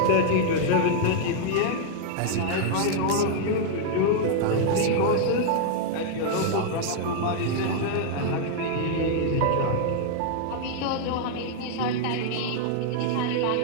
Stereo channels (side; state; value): both; different; correlation 0.00